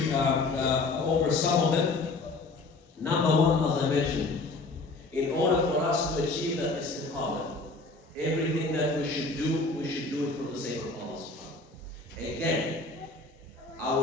over some of them. Number one, as I mentioned, in order for us to achieve that istiqamah, everything that we should do it for the sake of Allah. Again, I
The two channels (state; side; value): quieter; right; 3.5 dB